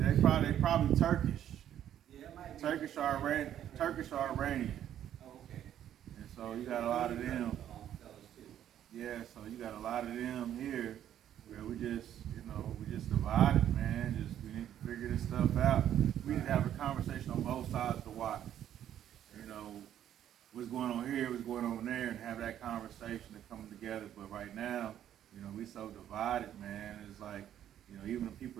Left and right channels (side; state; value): left; quieter; 10.8 dB